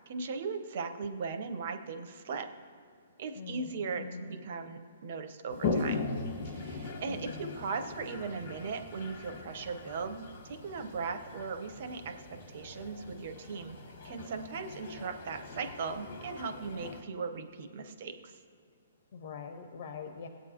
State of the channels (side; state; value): both; inverted; correlation -0.54